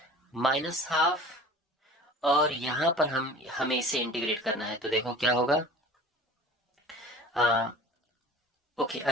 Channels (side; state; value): both; normal; correlation 0.42